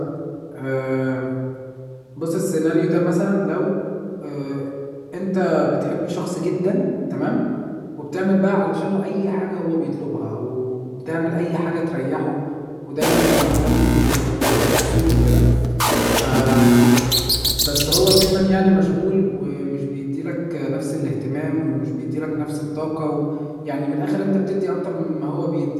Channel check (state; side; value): identical; both; correlation 1.00